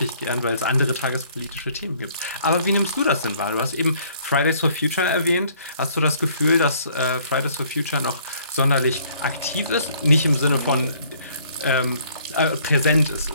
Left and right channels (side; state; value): both; inverted; correlation -0.61